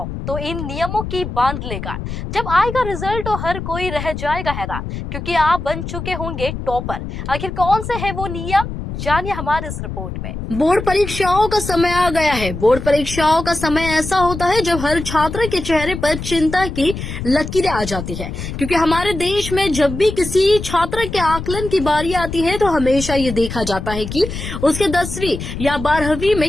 तो इन नियमों की बांध लेगा। जब आएगा रिजल्ट तो हर कोई रह जाएगा हैरान, क्योंकि आप बन चुके होंगे टॉपर। आखिर कौन से है वो नियम, जानिए हमारे इस रिपोर्ट में। बोर्ड परीक्षाओं का समय आ गया है। बोर्ड परीक्षाओं का समय ऐसा होता है जब हर छात्र के चेहरे पर चिंता की लकीरें आ जाती है, क्योंकि हमारे देश में जब भी किसी छात्र के आकलन की बारी आती है तो हमेशा ये देखा जाता है कि उसके 10वीं या 12वीं में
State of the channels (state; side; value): noise; left; rumble, 7 dB below the sound